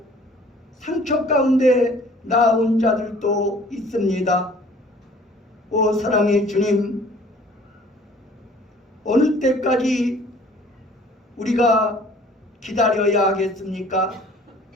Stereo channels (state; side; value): normal; both; correlation 0.53